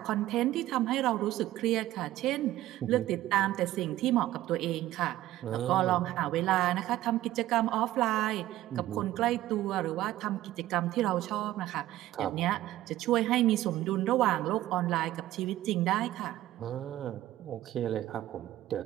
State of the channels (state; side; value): quieter; left; 14.8 dB